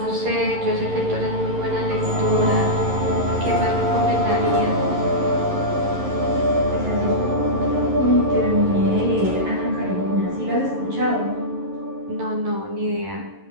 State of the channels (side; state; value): left; late; 11 ms